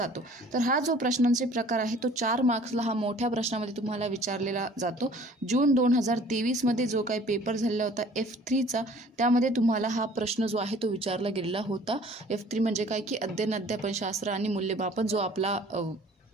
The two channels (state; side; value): normal; both; correlation 0.52